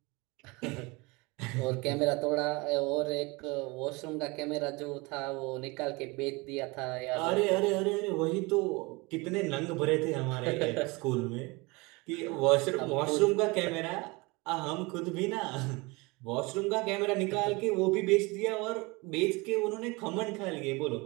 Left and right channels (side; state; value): left; quieter; 25.5 dB